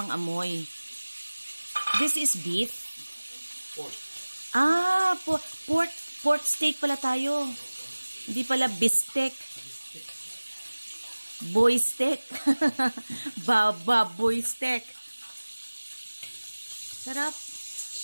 amoy. This is beef. Pork. Pork steak pala tayo. Hindi pala bistek. Boy steak. Boy steak. Sarap.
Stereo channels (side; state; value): both; inverted; correlation -1.00